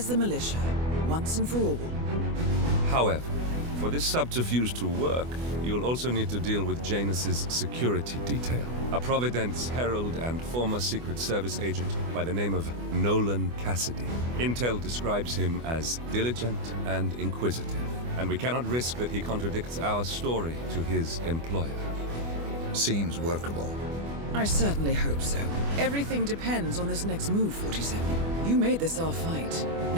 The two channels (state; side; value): late; left; 24 ms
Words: the militia, once and for all. However, for this subterfuge to work, you'll also need to deal with Janus's security detail. A Providence herald and former Secret Service agent by the name of Nolan Cassidy. Intel describes him as diligent and inquisitive, and we cannot risk that he contradicts our story to his employer. Seems workable. I certainly hope so. Everything depends on this next move, 47. You made this our fight.